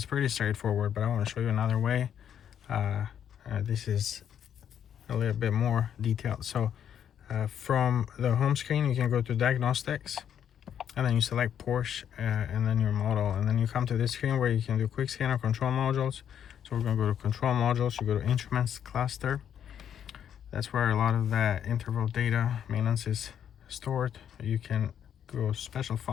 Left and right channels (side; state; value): right; quieter; 9.1 dB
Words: pretty straightforward, but I want to show you another way. This is a little bit more detailed. So from the home screen, you can go to diagnostics, and then you select Porsche and then your model, and then you come to this screen where you can do quick scanner control modules. So we're going to go to control modules. You go to instruments cluster. That's where a lot of that interval data maintenance is stored. You can go special